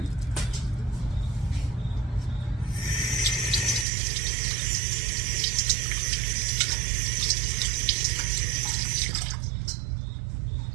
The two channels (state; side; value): drops out; left; at 3.9 s